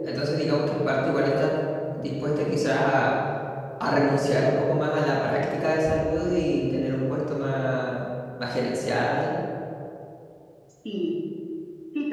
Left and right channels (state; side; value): identical; both; correlation 1.00